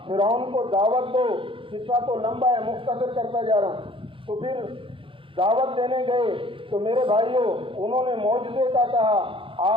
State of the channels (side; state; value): left; late; 0.25 ms